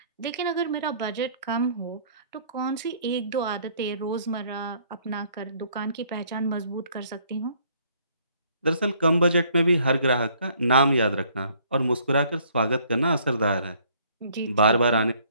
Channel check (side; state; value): both; inverted; correlation -0.61